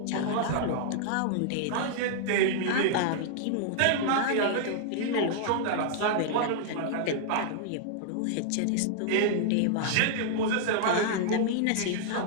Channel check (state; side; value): different; both; correlation -0.01